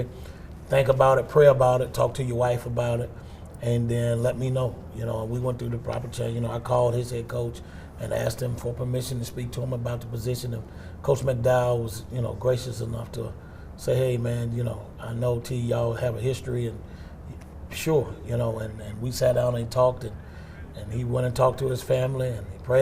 Think about it, pray about it, talk to your wife about it, and then let me know. You know, we went through the proper change. You know, I called his head coach and asked him for permission to speak to him about the position. And Coach McDowell was, you know, gracious enough to say, hey, man, you know, I know T, y'all have a history, and sure, you know, and we sat down and talked, and he went and talked to his family, and he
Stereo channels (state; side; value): identical; both; correlation 1.00